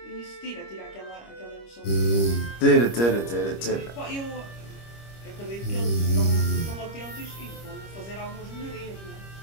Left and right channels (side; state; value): right; late; 25 ms